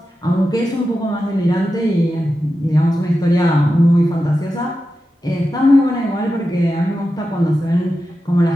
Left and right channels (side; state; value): both; normal; correlation 0.91